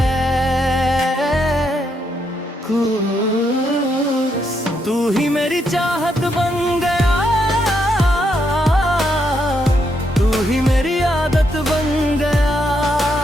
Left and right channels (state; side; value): normal; both; correlation 0.78